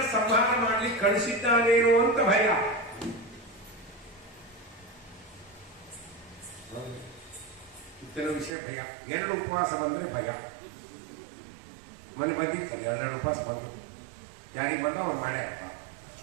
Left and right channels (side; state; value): left; drops out; at 8.5 s